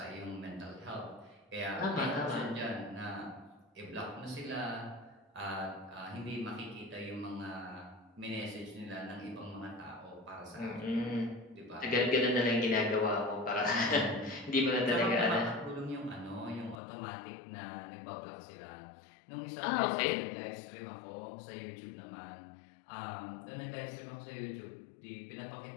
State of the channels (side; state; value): right; drops out; at 16.8 s